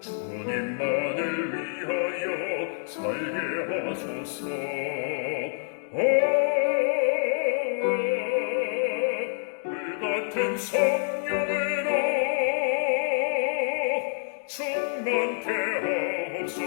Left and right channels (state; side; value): silent; right; digital silence